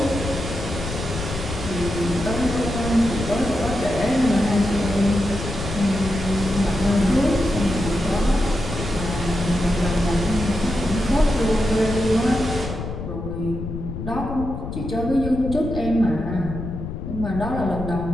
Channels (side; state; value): left; noise; rumble, 7 dB below the sound